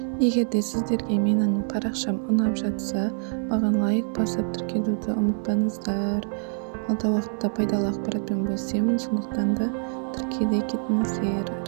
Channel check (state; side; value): silent; left; 59 dB below the other